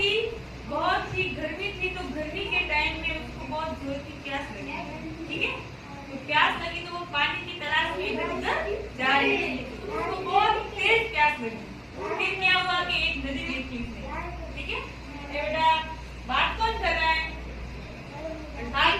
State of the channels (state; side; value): identical; both; correlation 1.00